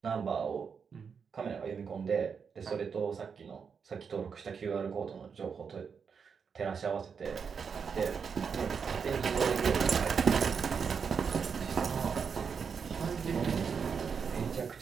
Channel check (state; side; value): quieter; left; 6.2 dB